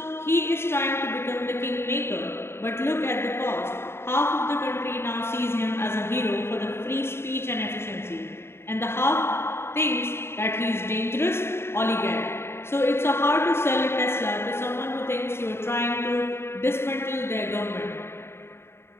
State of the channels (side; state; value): right; late; 0.12 ms